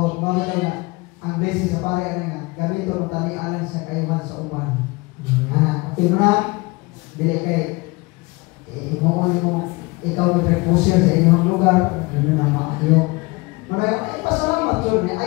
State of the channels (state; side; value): quieter; right; 24.7 dB